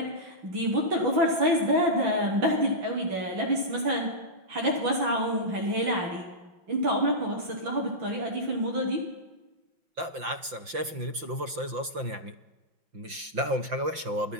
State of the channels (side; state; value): left; late; 5.8 ms